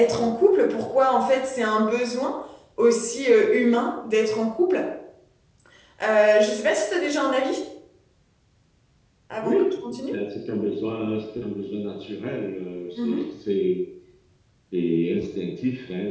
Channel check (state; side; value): identical; both; correlation 1.00